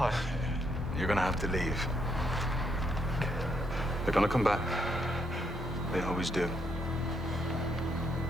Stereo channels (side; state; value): both; normal; correlation 0.75